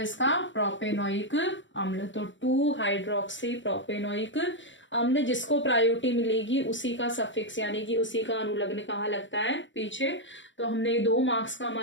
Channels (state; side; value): late; right; 0.54 ms